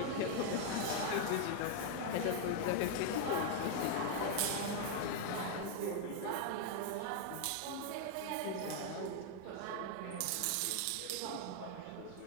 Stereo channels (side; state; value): both; different; correlation 0.00